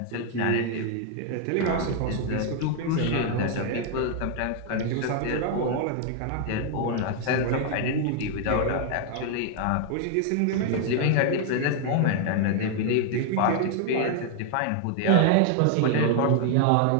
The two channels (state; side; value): different; both; correlation 0.00